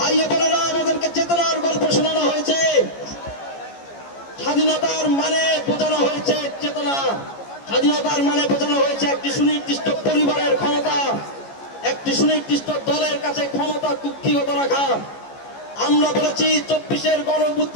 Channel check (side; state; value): right; late; 14 ms